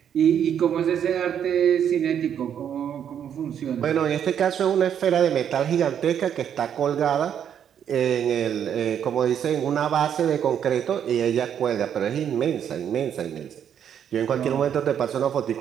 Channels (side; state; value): left; quieter; 8.9 dB